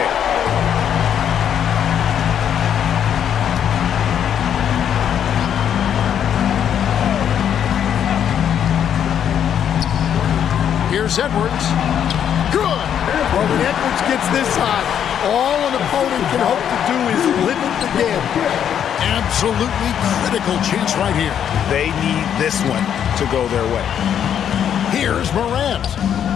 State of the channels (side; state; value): right; quieter; 9.1 dB